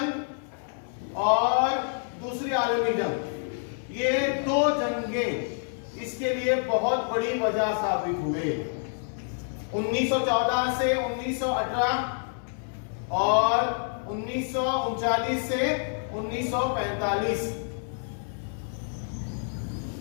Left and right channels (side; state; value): right; silent; 59 dB below the other